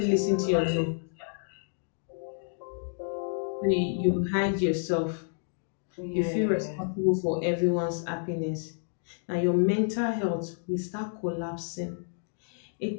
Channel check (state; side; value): silent; right; digital silence